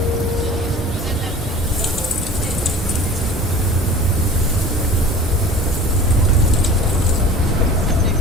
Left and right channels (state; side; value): normal; both; correlation 0.41